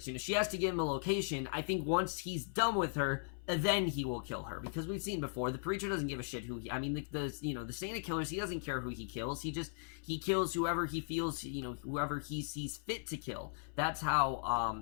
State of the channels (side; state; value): right; silent; 53 dB below the other